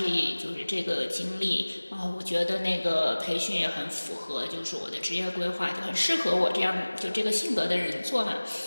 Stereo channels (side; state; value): both; inverted; correlation -1.00